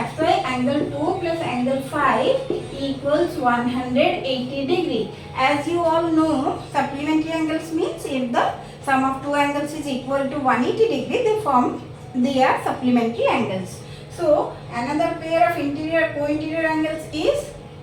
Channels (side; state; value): both; identical; correlation 1.00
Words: why angle 2 plus angle 5 equals 180 degree. As you all know, supplementary angles means if the sum of two angles is equal to 180 degree, they are supplementary angles. So another pair of co-interior angles is